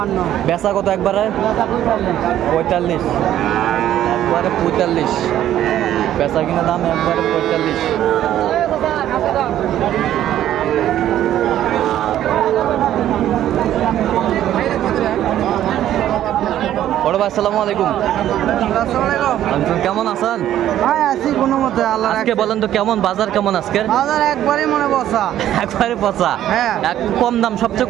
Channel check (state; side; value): quieter; left; 12.0 dB